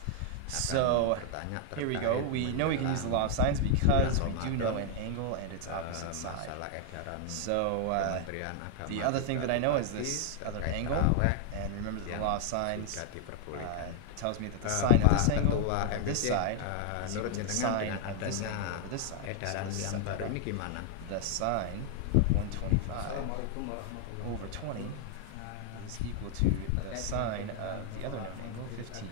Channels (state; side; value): different; both; correlation 0.00